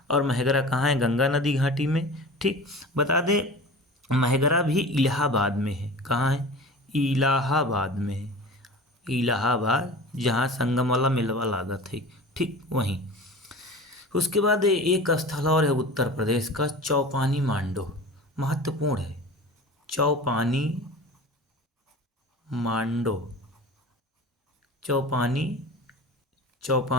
और महगरा कहाँ है? गंगा नदी घाटी में। ठीक, बता दें महगरा भी इलाहाबाद में है। कहाँ है? इलाहाबाद में है। इलाहाबाद, जहाँ संगम वाला मेलवा लागत है। ठीक, वहीं। उसके बाद एक स्थल और है उत्तर प्रदेश का, चौपानी मांडो। महत्वपूर्ण है। चौपानी मांडो, चौपानी,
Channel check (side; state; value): both; normal; correlation 0.36